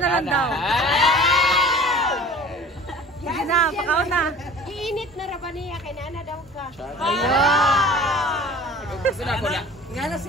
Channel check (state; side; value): normal; both; correlation 0.43